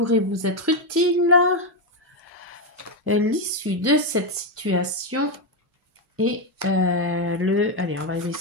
vous être utiles, l'issue de cette situation et allez, on va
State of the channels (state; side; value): normal; both; correlation 0.06